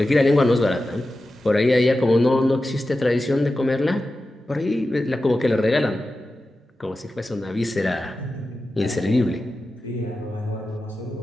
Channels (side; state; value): both; normal; correlation 0.93